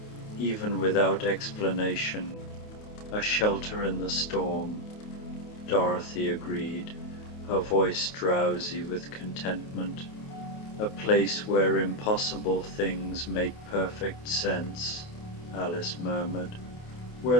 even without explanation. A shelter in the storm," Dorothy agreed, her voice drowsy with contentment. "A place where impossible things make perfect sense," Alice murmured.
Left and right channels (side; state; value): right; late; 28 ms